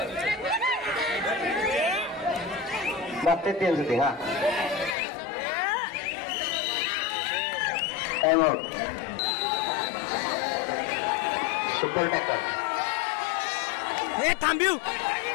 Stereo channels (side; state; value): right; drops out; at 5.0 s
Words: बघतात त्यांचं ते. हा टाइम आउट. Super tackle. हे थांबिव